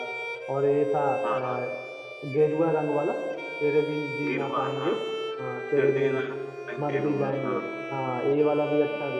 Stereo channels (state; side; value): identical; both; correlation 1.00